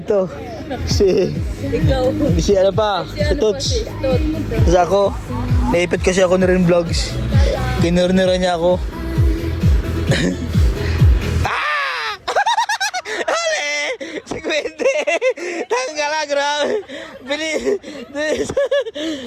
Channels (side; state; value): both; identical; correlation 1.00